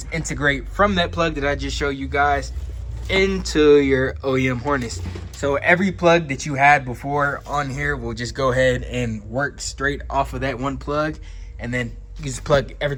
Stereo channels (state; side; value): identical; both; correlation 1.00